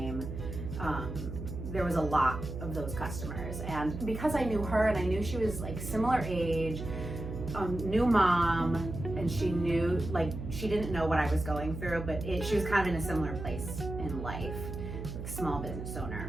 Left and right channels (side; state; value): right; noise; hum, 7 dB below the sound